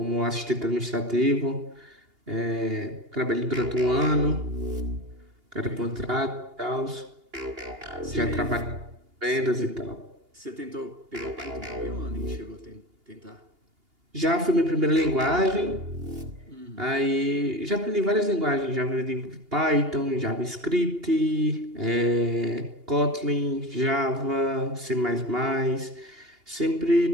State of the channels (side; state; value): left; late; 2.8 ms